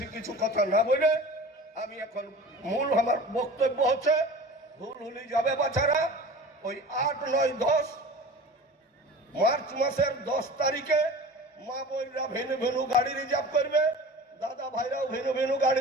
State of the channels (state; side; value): normal; both; correlation 0.38